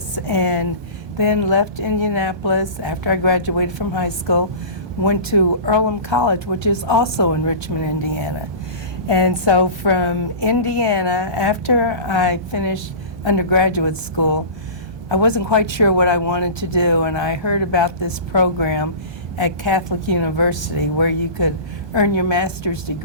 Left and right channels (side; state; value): left; late; 1.2 ms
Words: and then left Indianapolis after I graduated from high school, went to Earlham College, which is also in Richmond, Indiana. And so from Indiana, after I finished undergraduate school, I wasn't quite sure what I wanted to do, and I heard about this program at Catholic University where you could earn your master's